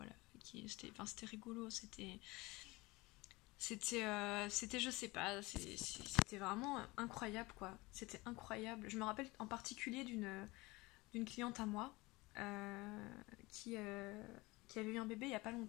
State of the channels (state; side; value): quieter; right; 22.3 dB